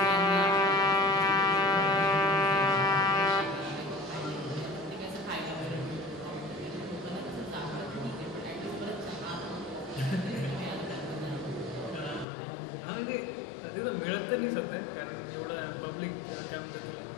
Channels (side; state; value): right; drops out; at 12.2 s